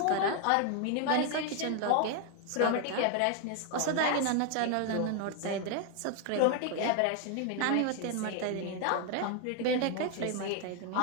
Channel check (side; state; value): both; different; correlation 0.01